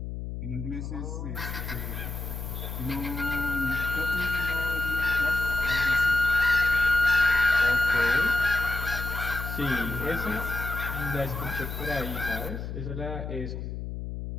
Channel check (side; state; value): left; noise; hum, 6 dB below the sound